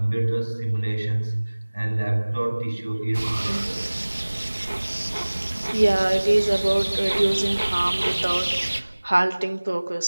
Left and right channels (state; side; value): inverted; both; correlation -1.00